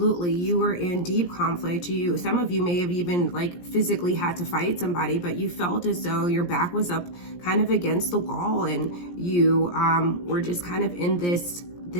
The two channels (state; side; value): late; right; 17 ms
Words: you were in deep conflict. Some of you may have even like physically had to fight somebody, but you felt as though your back was up kind of against the wall, and you were just kind of in this